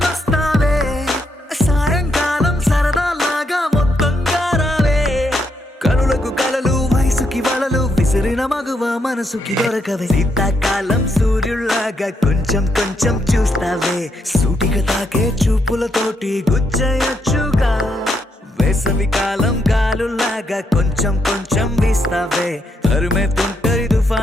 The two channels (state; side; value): normal; both; correlation 0.78